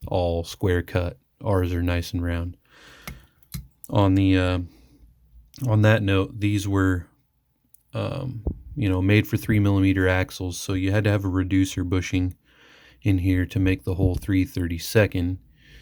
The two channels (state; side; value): identical; both; correlation 1.00